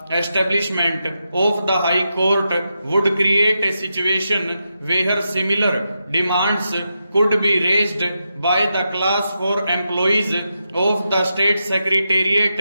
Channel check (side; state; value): both; inverted; correlation -0.87